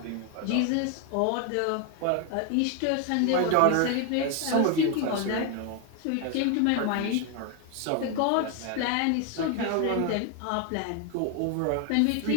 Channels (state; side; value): different; both; correlation 0.01